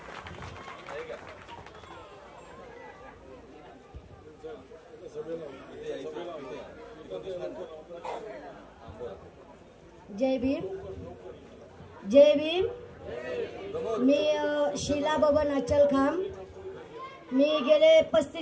जय भीम, जय भीम। मी शीला बबन अचलखाम। मी गेले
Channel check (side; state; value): both; identical; correlation 1.00